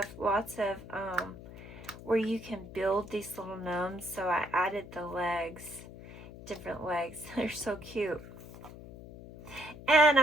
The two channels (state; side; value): noise; left; hum, 15 dB below the sound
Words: lots of where you can build these little gnomes. So I added the legs, different legs. They're so cute. And